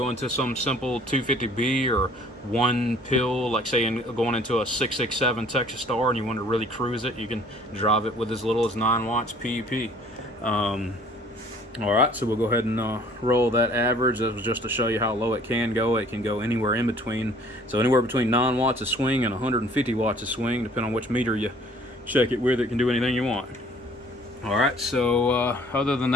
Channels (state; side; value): normal; both; correlation 0.55